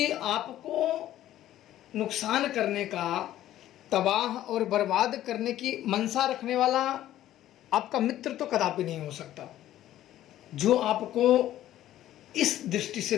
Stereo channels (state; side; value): quieter; right; 13.2 dB